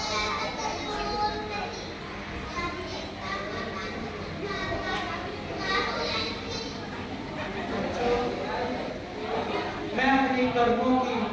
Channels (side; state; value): both; identical; correlation 1.00